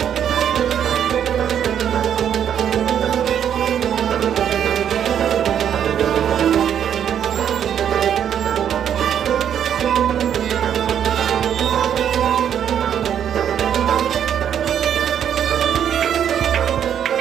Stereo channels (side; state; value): left; quieter; 9.1 dB